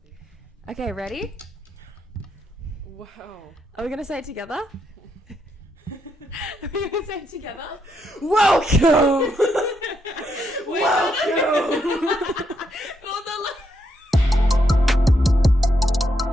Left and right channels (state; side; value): normal; both; correlation 0.78